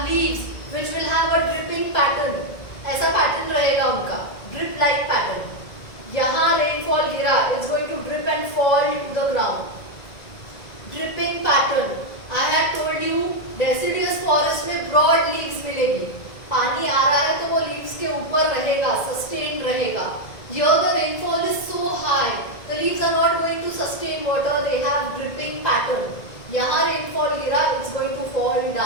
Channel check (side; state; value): right; late; 1.9 ms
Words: leaves which will have a dripping pattern. ऐसा pattern रहेगा उनका, drip-like pattern. यहाँ rainfall गिरा, it's going to drip and fall to the ground. Dripping pattern, I had told you deciduous forest में broad leaves मिलेगी, पानी आ रहा है तो वो लीव्स के ऊपर रहेगा, सस्टेन रहेगा। Here the rainfall is so high, the leaves are not going to sustain water, they have dripping pattern. यहाँ रेनफॉल गिरा, it's going to fall